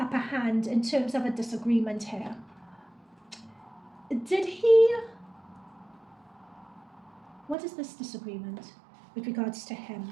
hand in terms of a disagreement here. Did he... What is this disagreement with regards to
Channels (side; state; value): left; drops out; at 7.6 s